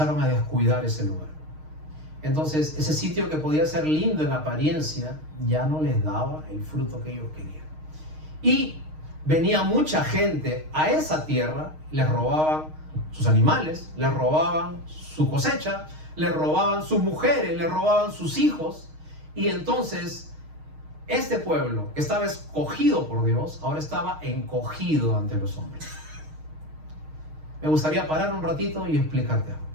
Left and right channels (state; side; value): late; left; 6.4 ms